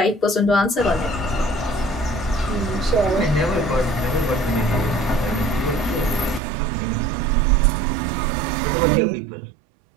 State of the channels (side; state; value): left; drops out; at 6.4 s